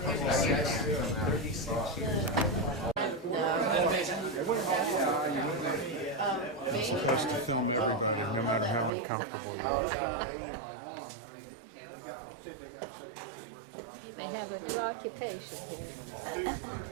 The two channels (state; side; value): drops out; left; at 8.9 s